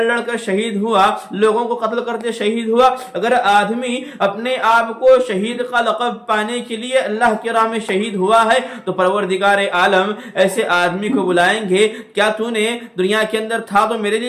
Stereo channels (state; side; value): identical; both; correlation 1.00